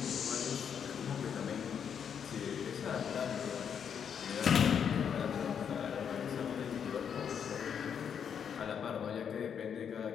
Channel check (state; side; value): quieter; right; 7.7 dB